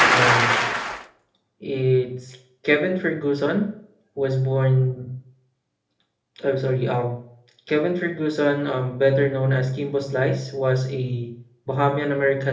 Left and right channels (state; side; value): identical; both; correlation 1.00